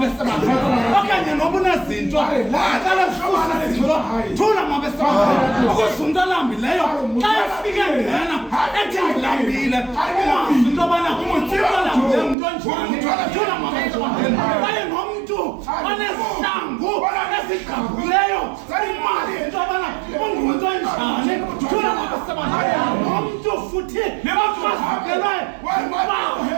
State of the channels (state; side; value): drops out; left; at 12.4 s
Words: okanye noba unezinto aqala kufuza thula mabesebalo ukuzundalambileyo xa efike ngena ethi ngilambile ungazi into yobana umuthibalambileyo umntu onjani thula mabesebalo kwaye nomntu onesihlangu esigqabhuleyo imali into yobana ungumntu onjani thula mabesebalo nomntu futhi nebafakelwe